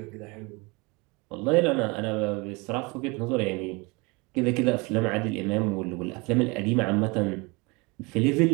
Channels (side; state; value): left; quieter; 26.9 dB